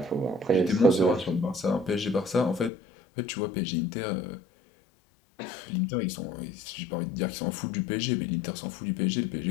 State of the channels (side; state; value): right; drops out; at 2.7 s